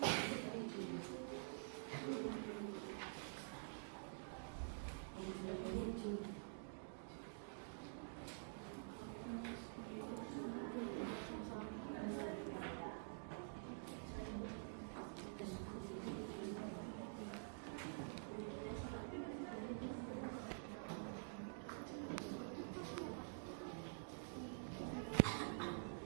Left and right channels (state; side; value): silent; left; digital silence